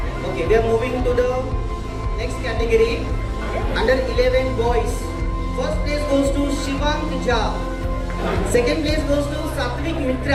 Okay, we are moving to the next category. Under 11 boys, first place goes to Shivang Jha. Second place goes to Satvik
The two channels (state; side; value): identical; both; correlation 1.00